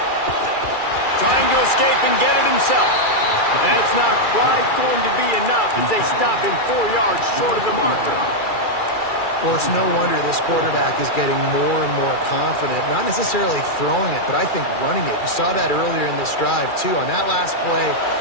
Trying to escape and get it himself. That's not quite going to be enough as they stop him 4 yards short of the marker. Well, it's no wonder this quarterback is getting more and more confident, not necessarily throwing it, but I think running it. You saw that earlier in this drive, too. On that last play,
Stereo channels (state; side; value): late; right; 2.3 ms